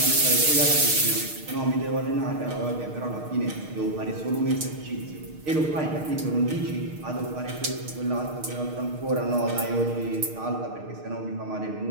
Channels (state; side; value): late; left; 6.5 ms